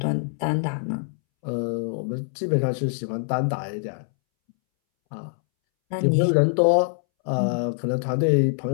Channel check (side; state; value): right; silent; 63 dB below the other